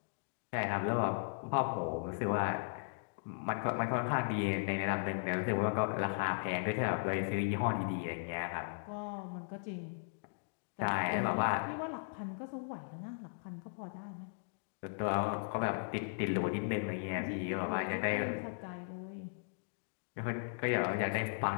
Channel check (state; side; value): silent; right; digital silence